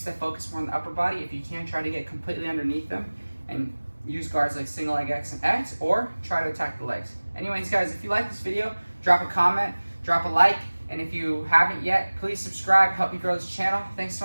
that focus more on the upper body. If you can, try to get completely underneath them and use guards like single leg X and X, or try to attack the legs. Anyways, guys, if you like this video, drop a comment, drop a like, and if you haven't yet, please subscribe, help me grow this channel. Thanks to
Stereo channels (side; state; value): both; inverted; correlation -1.00